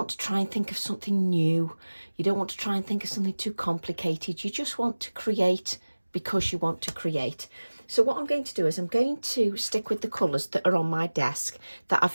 to try and think of something new? You don't want to try and think of something too complicated. You just want to create because you want to create. So what I'm going to do is I'm going to stick with the colours that are on my desk that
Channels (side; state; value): both; inverted; correlation -1.00